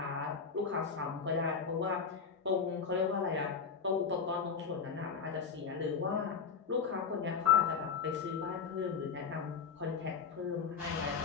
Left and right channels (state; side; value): quieter; right; 6.0 dB